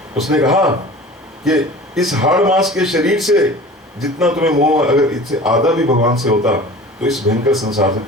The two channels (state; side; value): normal; both; correlation 0.40